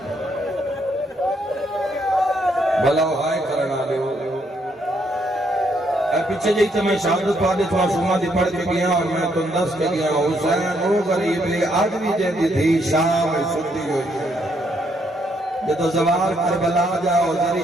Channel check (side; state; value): both; normal; correlation 0.73